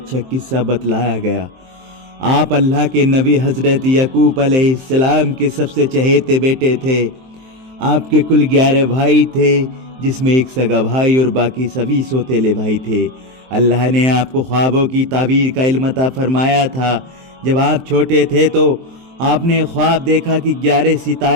قصہ بتلایا گیا۔ آپ اللہ کے نبی حضرت یعقوب علیہ السلام کے سب سے چہیتے بیٹے تھے۔ آپ کے کل 11 بھائی تھے، جس میں ایک سگا بھائی اور باقی سبھی سوتیلے بھائی تھے۔ اللہ نے آپ کو خوابوں کی تعبیر کا علم عطا فرمایا تھا۔ جب آپ چھوٹے تھے تو آپ نے خواب دیکھا کہ 11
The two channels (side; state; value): left; late; 23 ms